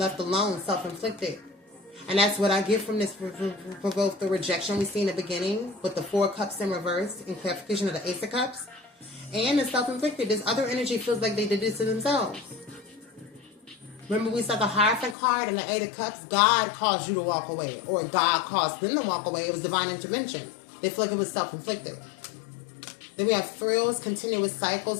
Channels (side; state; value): right; drops out; at 15.2 s